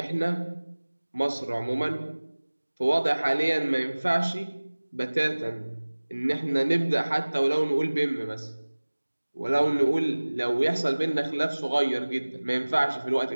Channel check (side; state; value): both; inverted; correlation -1.00